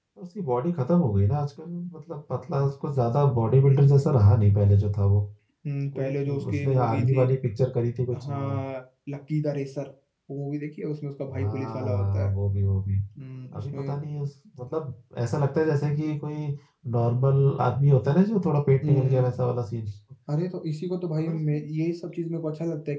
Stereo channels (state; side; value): identical; both; correlation 1.00